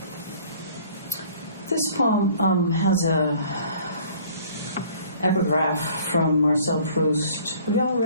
This poem has a epigraph from Marcel Proust. Have you all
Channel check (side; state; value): both; inverted; correlation -0.53